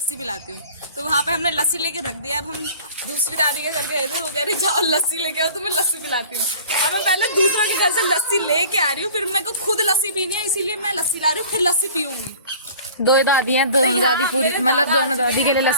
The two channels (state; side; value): inverted; both; correlation -0.46